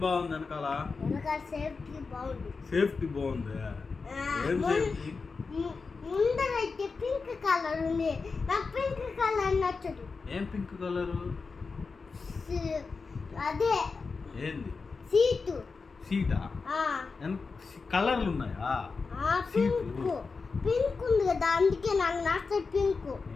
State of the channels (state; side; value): quieter; right; 4.6 dB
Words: బాగుంది వెనకాల? వెనకాల సేఫ్టీ బాగుంది. సేఫ్టీ బాగుంది. ఏం సేఫ్టీ? ముందరైతే పింక్ కలర్ ఉంది. నాకు పింక్ కలర్ నచ్చదు. ఏం పింక్ కలరు? అదే ఏంది? సీటు. సీటా? కలర్లు ఉన్నాయా? పింక్ పింక్ ఉంది కదా, అందుకే నాకు నచ్చదు పింక్.